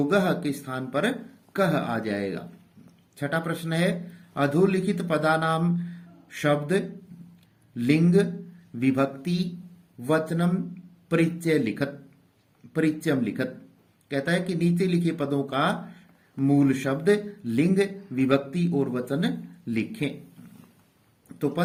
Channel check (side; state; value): both; identical; correlation 1.00